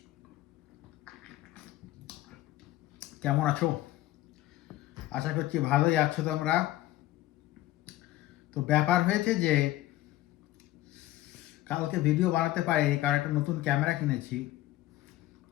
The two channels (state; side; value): quieter; right; 15.8 dB